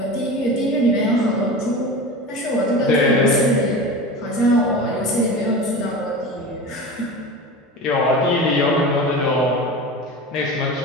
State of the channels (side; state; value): both; normal; correlation 0.30